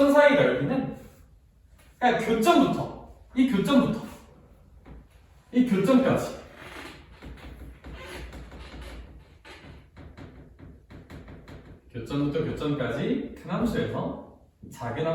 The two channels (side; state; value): both; identical; correlation 1.00